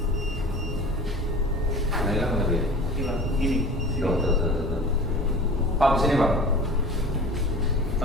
Pak, sini Pak.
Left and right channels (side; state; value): both; normal; correlation 0.40